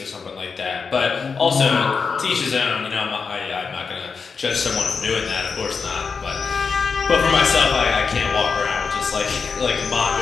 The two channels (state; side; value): quieter; right; 5.3 dB